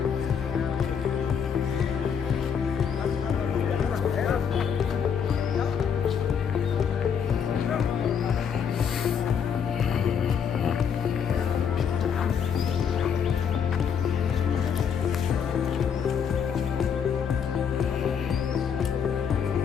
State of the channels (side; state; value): right; quieter; 7.4 dB